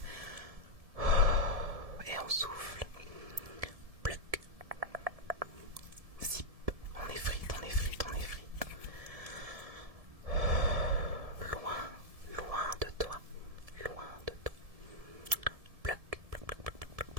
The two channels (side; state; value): left; late; 1.7 ms